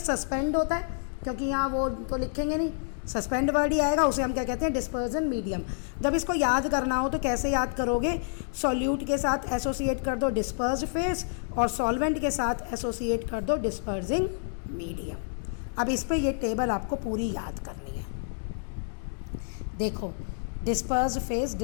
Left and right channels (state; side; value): silent; right; digital silence